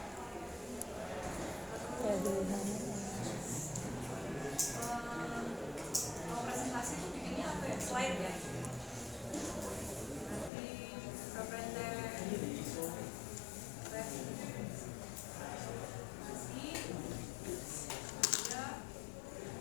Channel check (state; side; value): drops out; right; at 10.5 s